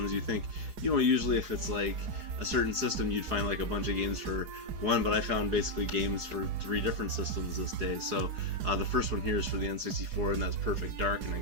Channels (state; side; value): late; left; 4.8 ms